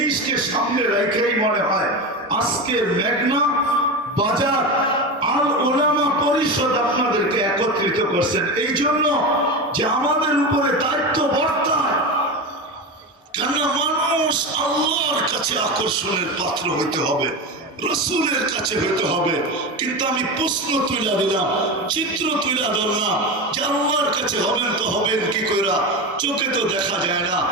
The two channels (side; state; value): both; normal; correlation 0.21